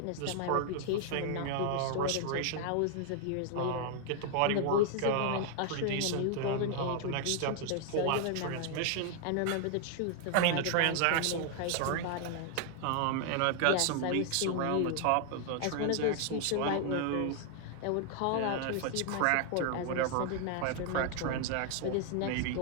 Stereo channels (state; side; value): different; both; correlation 0.00